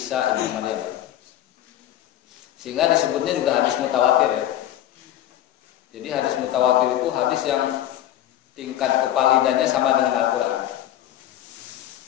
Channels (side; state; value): right; quieter; 12.6 dB